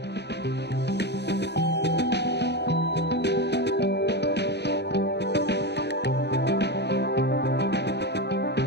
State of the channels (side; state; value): right; late; 0.49 ms